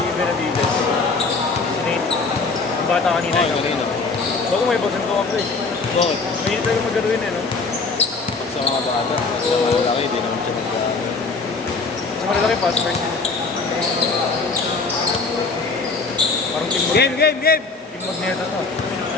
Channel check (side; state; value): right; quieter; 4.1 dB